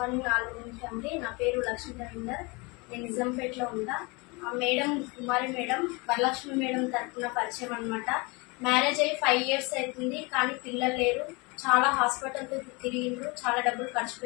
all family. నా పేరు లక్ష్మీ రవీందర్. నేను నిజాంపేటలో ఉంటా. మేడం కుమారి మేడం వరలక్ష్మి మేడం తరఫున పరిచయం అనమాట. మ్యారేజ్ అయ్యి 5 years అవుతుంది, కానీ పిల్లలు లేరు. చాలా హాస్పిటల్తో తిరిగిండ్రు, చాలా డబ్బులు ఖర్చు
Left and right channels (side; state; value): right; quieter; 27.5 dB